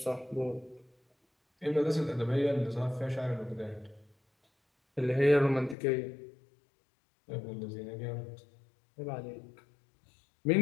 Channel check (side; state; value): right; drops out; at 5.8 s